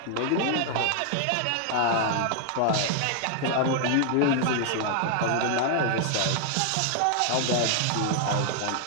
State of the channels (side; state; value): both; different; correlation 0.00